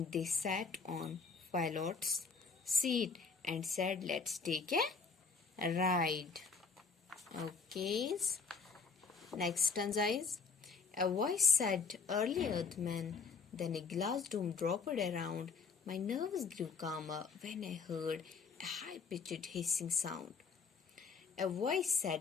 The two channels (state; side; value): quieter; right; 5.2 dB